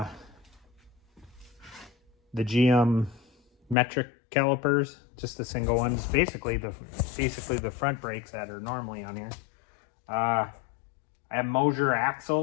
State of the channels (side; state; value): right; drops out; at 3.8 s